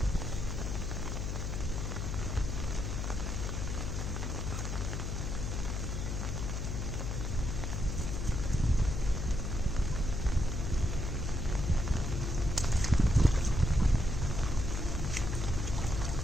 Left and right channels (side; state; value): left; noise; hum, 2 dB below the sound